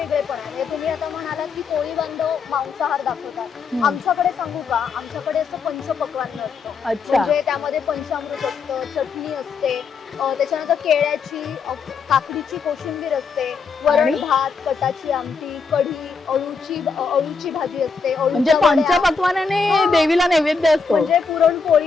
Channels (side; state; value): right; quieter; 5.0 dB